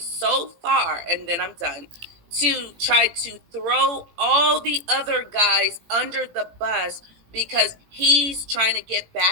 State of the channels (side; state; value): left; late; 18 ms